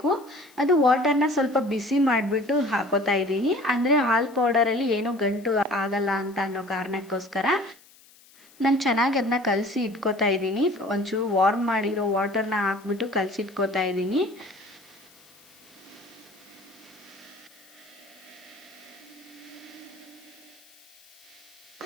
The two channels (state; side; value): noise; left; hiss, 26 dB below the sound